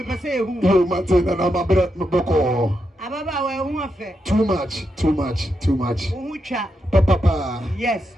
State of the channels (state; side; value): normal; both; correlation 0.84